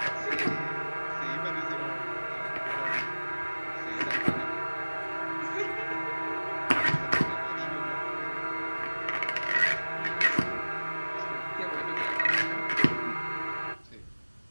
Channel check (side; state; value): both; inverted; correlation -1.00